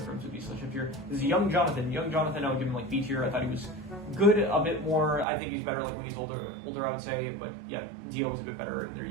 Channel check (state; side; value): drops out; left; at 5.2 s